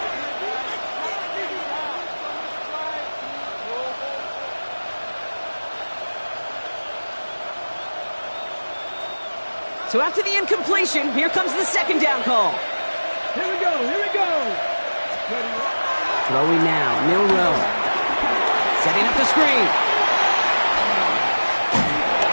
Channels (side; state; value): both; inverted; correlation -1.00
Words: So after the incompletion, here comes the 2nd down call. Here we go, here we go. Throwing now, Milroe. Setting up the screen.